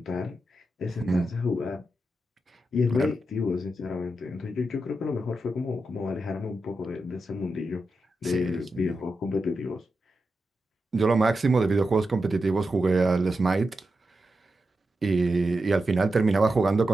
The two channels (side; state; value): both; normal; correlation 0.88